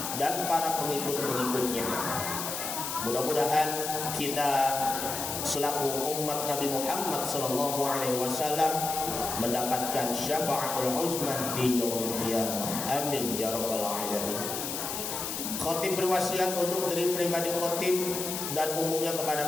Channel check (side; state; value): left; noise; hiss, 4 dB below the sound